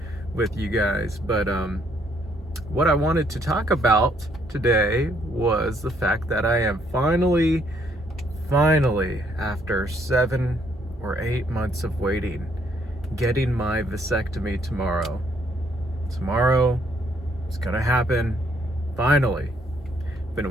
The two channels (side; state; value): both; normal; correlation 0.69